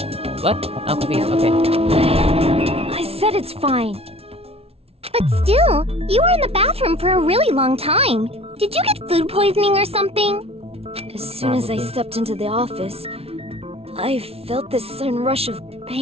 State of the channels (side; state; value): left; late; 0.29 ms